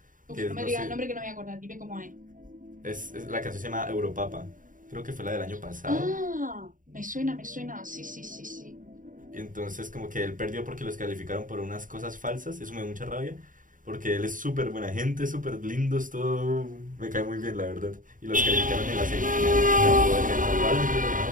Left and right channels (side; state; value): left; late; 0.39 ms